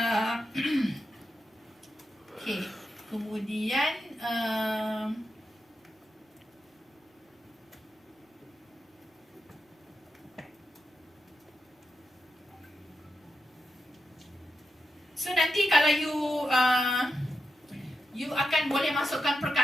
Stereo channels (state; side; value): normal; both; correlation 0.88